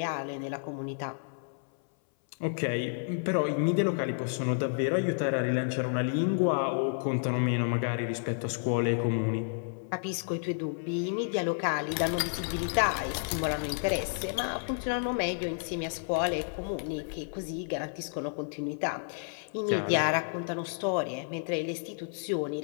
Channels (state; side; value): silent; right; 57 dB below the other